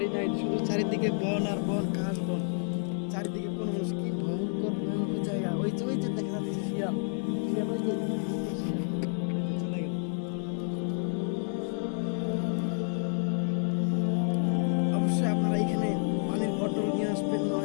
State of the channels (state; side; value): silent; right; 58 dB below the other